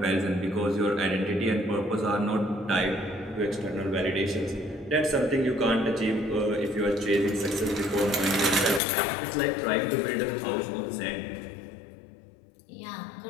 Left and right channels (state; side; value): drops out; right; at 8.8 s